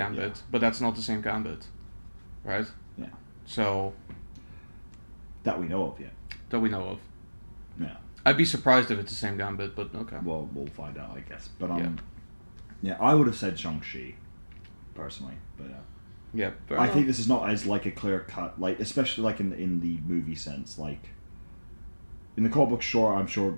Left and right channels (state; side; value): inverted; both; correlation -1.00